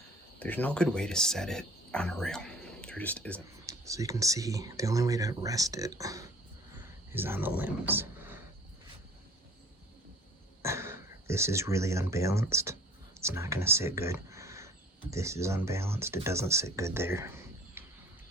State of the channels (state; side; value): normal; both; correlation 0.49